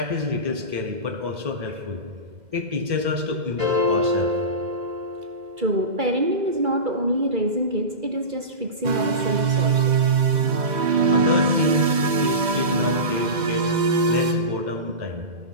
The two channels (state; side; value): late; left; 2.0 ms